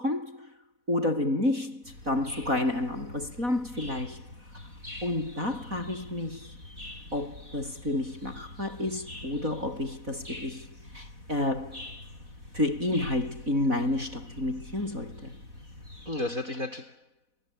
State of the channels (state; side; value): late; left; 4.1 ms